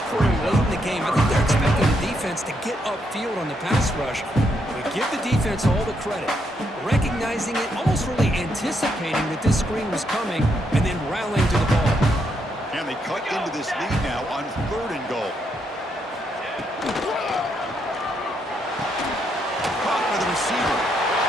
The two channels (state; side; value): normal; both; correlation 0.77